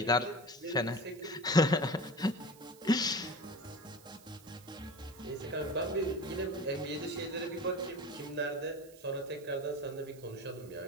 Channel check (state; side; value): noise; right; hiss, 23 dB below the sound